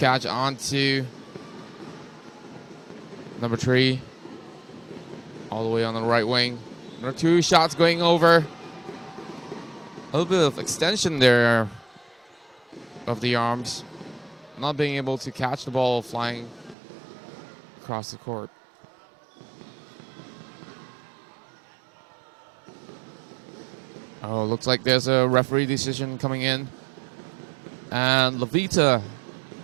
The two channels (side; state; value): left; drops out; at 16.8 s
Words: on to number 3. All the way on the right wing. Number 2 shots going over. A little bit of extension there of the arms. Not being able to catch the ball flying across the court. Oh, looks like there's a referee decision coming in. And Levita